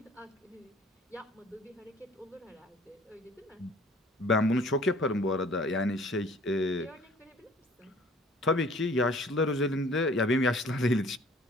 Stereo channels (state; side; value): normal; both; correlation 0.52